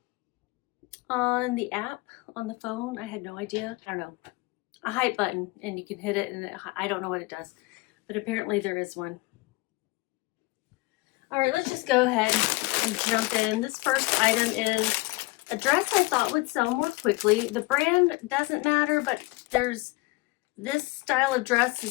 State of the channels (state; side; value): quieter; right; 23.0 dB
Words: on the app, on the phone. I had no idea. I don't know. A hype button, and you can hit it, and I don't know what it does, but apparently there is one. All right, let's just go ahead and jump in. This first item is a dress I thought would sell more quickly. The brand doesn't matter, but there's this style of dress